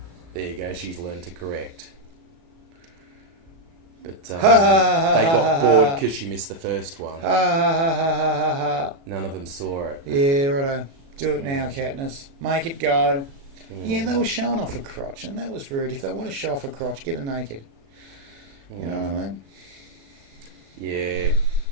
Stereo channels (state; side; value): late; left; 36 ms